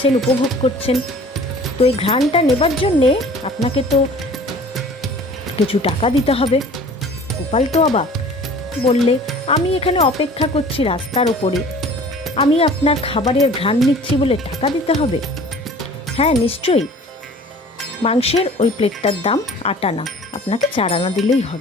উপভোগ করছেন, তো এই ঘ্রাণটা নেবার জন্যে আপনাকে তো কিছু টাকা দিতে হবে। গোপাল তো অবাক, বললে, আমি এখানে অপেক্ষা করছি রাস্তার ওপরে, আমি আপনার খাবারের ঘ্রাণ নিচ্ছি বলে টাকা দিতে হবে? হ্যাঁ নিশ্চয়ই, মাংসের ওই প্লেটটার দাম 8 আনা, আপনাকে 4 আনা দিলেই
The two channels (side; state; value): both; normal; correlation 0.47